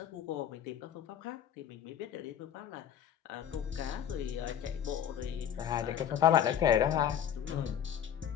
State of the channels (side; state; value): right; quieter; 9.5 dB